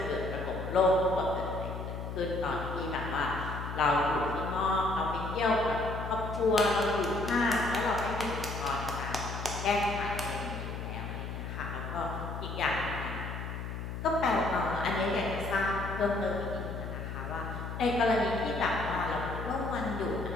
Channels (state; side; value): noise; left; hum, 6 dB below the sound